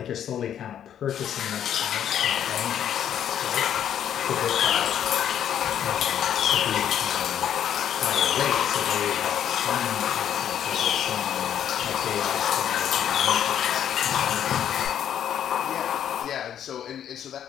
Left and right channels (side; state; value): right; quieter; 9.8 dB